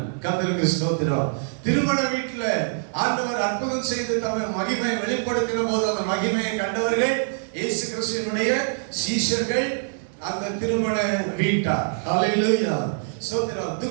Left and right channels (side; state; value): left; silent; digital silence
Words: கர்த்தருக்கு ஸ்தோத்திரம். திருமண வீட்டுல ஆண்டவர் அற்புதம் செய்து தம்முடைய மகிமையை வெளிப்படுத்தின போது அந்த மகிமையை கண்டவர்கள் இயேசு கிறிஸ்துவினுடைய சீஷர்கள், அந்த திருமண வீட்டார். ஹல்லேலூயா. ஸ்தோத்திரம்.